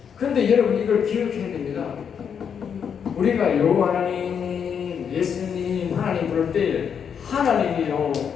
그런데 여러분 이걸 기억해야 됩니다. 우리가 여호와 하나님, 예수님, 하나님 부를 때 하나님이요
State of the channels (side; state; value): right; quieter; 7.4 dB